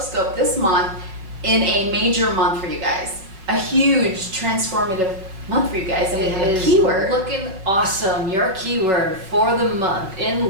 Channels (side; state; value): left; late; 5.3 ms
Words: this month in a major month for you guys. A huge transformative month for you guys, and we have a keyword. Looking awesome. Your keyword for the month